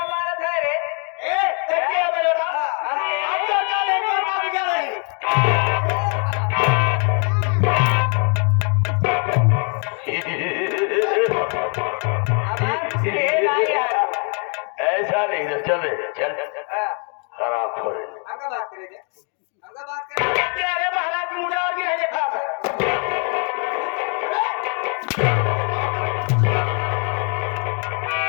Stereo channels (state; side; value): quieter; right; 39.0 dB